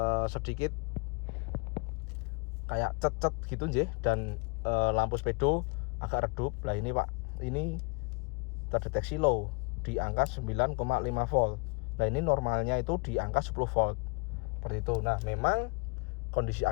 sedikit kayak cet-cet gitu nggih, dan lampu speedo agak redup. Lah ini Pak, ini terdeteksi low di angka 9,5 volt. Nah ini normalnya itu di angka 10 volt. Seperti itu. Nah memang kondisi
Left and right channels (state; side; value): quieter; right; 32.5 dB